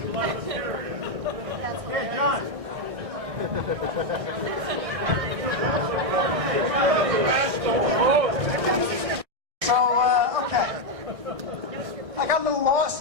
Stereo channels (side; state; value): left; late; 1.5 ms